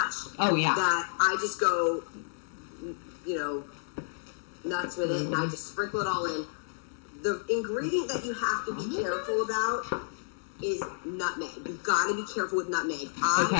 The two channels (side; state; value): right; silent; digital silence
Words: that I just go, nuts with it, and I just sprinkle it all in. The ingredient that you have to be careful about is nutmeg. You've got to be careful with nutmeg.